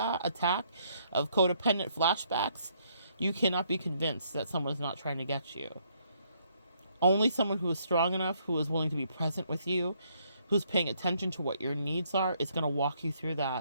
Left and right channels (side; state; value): both; inverted; correlation -0.70